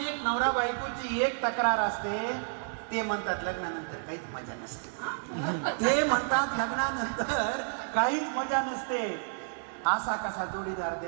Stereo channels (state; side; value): silent; left; digital silence